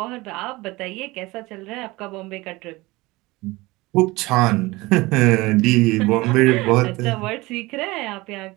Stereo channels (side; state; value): left; quieter; 21.5 dB